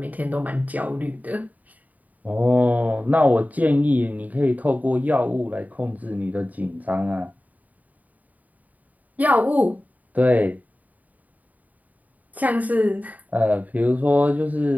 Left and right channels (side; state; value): left; late; 0.074 ms